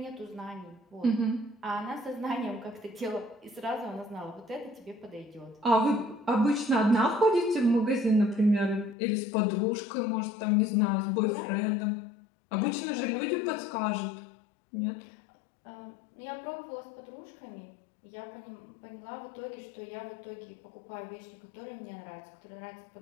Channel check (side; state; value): right; drops out; at 9.0 s